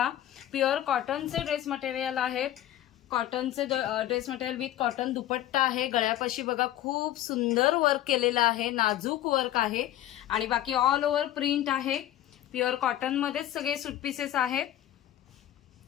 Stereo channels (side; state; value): right; quieter; 12.9 dB